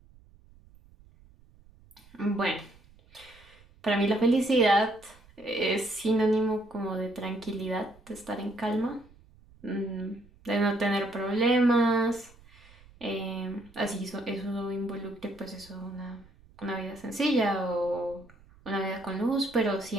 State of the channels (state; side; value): noise; right; rumble, 26 dB below the sound